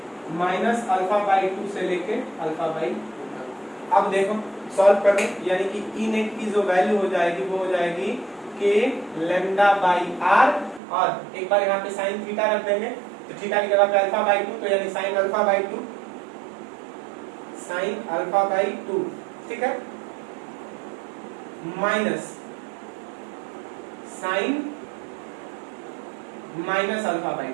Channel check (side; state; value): left; drops out; at 10.8 s